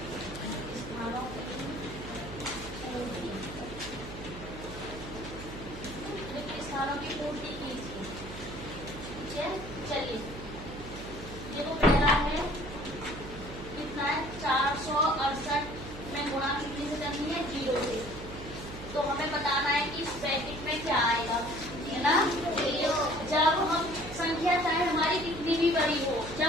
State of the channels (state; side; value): noise; right; hum, 12 dB below the sound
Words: रिक्त स्थानों की पूर्ति कीजिए। ठीक है, चलिए देखो पहला है कितना है? 468 में गुणा कितने से करनी है? 0 से। तो हमें बताना है कि इस ब्रैकेट में क्या आएगा, है ना? जब हम संख्या चाहे हमारी कितनी भी बड़ी हो,